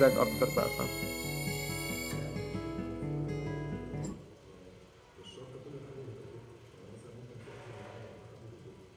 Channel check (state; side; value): identical; both; correlation 1.00